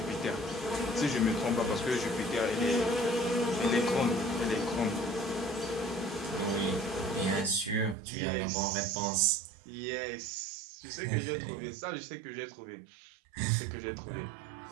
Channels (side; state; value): left; drops out; at 8.0 s